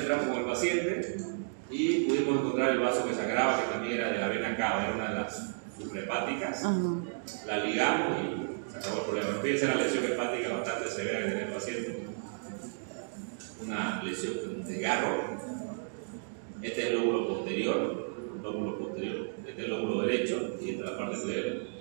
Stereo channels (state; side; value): silent; left; digital silence